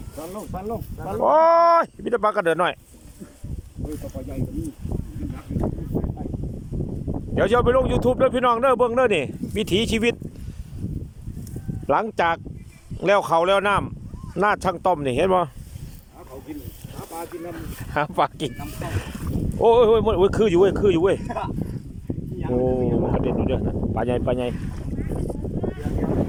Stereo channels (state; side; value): identical; both; correlation 1.00